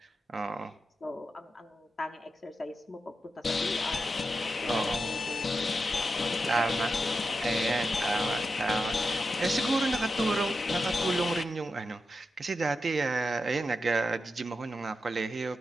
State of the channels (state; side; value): normal; both; correlation 0.88